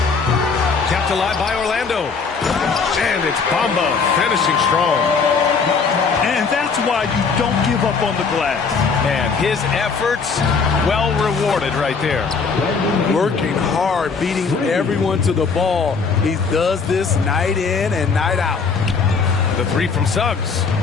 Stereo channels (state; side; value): quieter; right; 5.2 dB